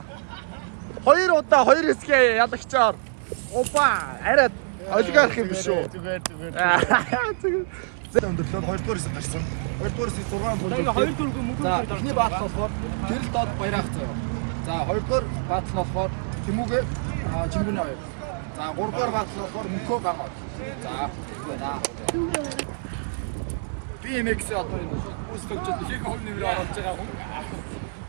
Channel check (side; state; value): left; silent; 58 dB below the other